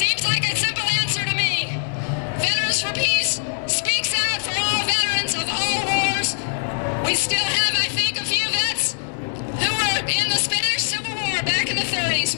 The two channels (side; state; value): right; silent; digital silence